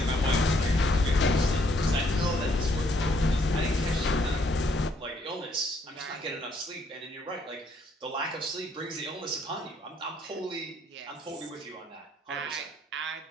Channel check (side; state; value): both; normal; correlation 0.68